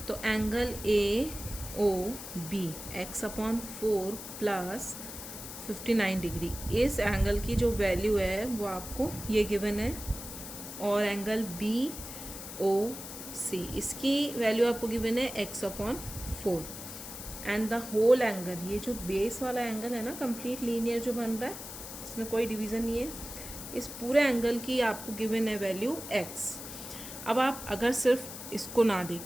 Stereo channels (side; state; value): left; noise; hiss, 10 dB below the sound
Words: तो angle A O B x upon 4 plus 59 degree, इस angle की जो वैल्यू है वो आपको ये गिवन है. और एंगल बी ओ सी, इसकी वैल्यू आपको गिवन है x upon 4. And the whole angle, ये जो बेस वाला एंगल है ना, कंप्लीट लीनियर जो बन रहा है, इसमें कोई डिवीज़न नहीं है, इस पूरे एंगल की आपको गिवन है वैल्यू x. अब आप अगर सिर्फ इसको ना